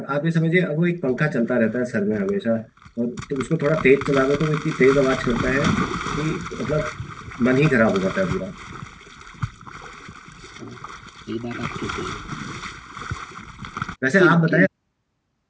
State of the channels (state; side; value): identical; both; correlation 1.00